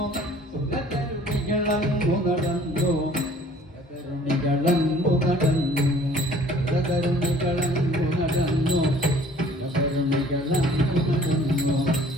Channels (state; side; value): normal; both; correlation 0.53